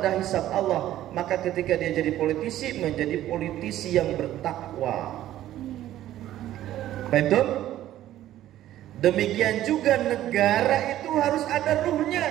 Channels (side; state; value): left; quieter; 13.2 dB